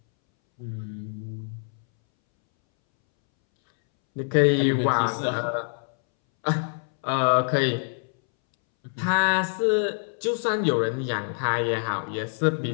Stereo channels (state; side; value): silent; right; 61 dB below the other